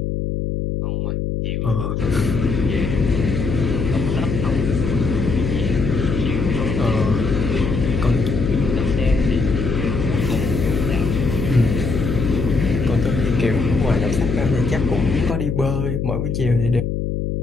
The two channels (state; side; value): noise; left; hum, 1 dB below the sound